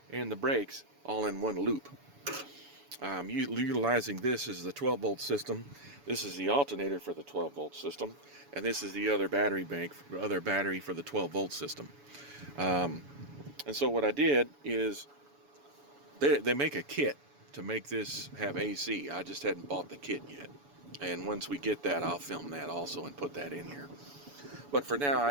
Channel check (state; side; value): late; left; 7.0 ms